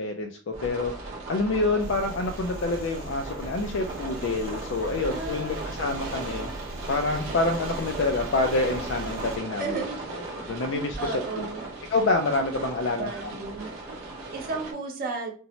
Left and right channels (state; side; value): normal; both; correlation -0.04